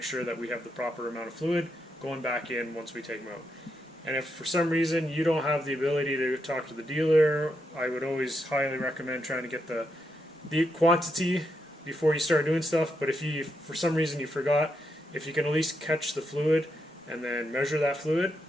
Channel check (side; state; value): both; normal; correlation 0.82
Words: sure that we have the proper amount of fluid going back in once we take them out. And if for some reason you don't have the ability to talk to the dealer, I would always highly recommend trying to get the quantity before you start doing stuff. But if you, for some reason you forgot, if you can at least catch the fluid and then measure that fluid,